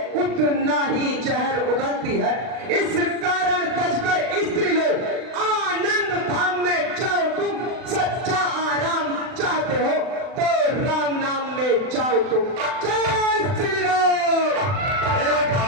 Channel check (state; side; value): late; left; 39 ms